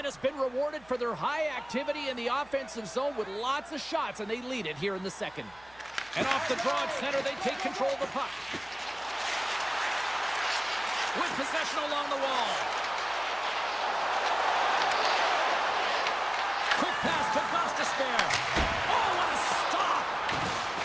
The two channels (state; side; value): noise; right; hum, 27 dB below the sound